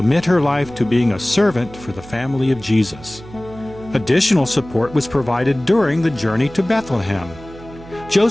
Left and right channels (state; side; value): noise; right; hum, 18 dB below the sound